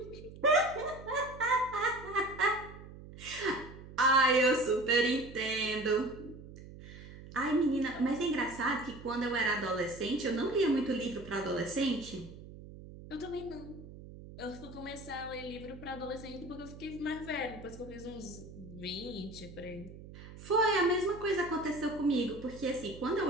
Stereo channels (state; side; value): noise; right; hum, 15 dB below the sound